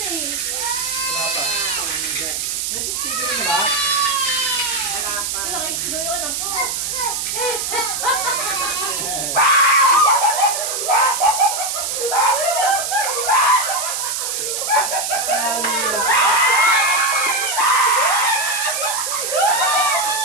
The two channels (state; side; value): noise; right; hiss, 2 dB below the sound